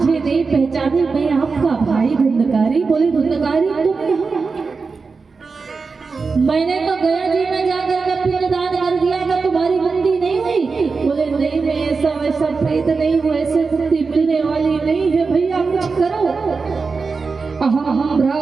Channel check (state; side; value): quieter; left; 4.6 dB